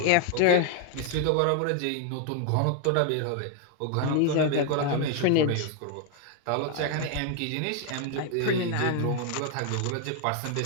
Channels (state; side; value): different; both; correlation 0.01